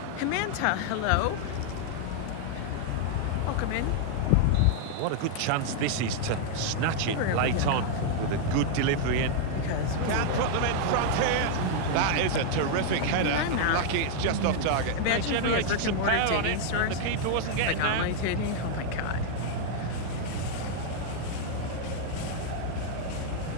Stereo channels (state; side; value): different; both; correlation 0.00